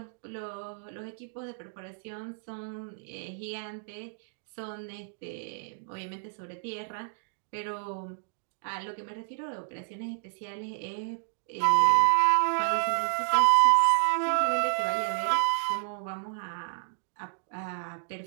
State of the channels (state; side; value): silent; left; digital silence